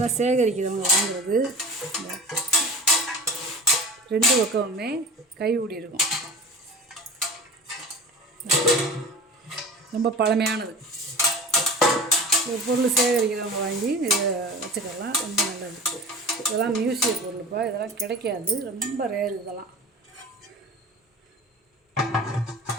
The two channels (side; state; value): both; normal; correlation 0.36